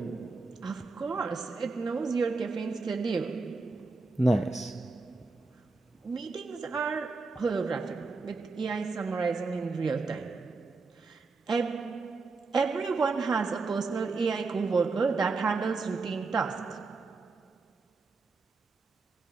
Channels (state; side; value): quieter; left; 4.0 dB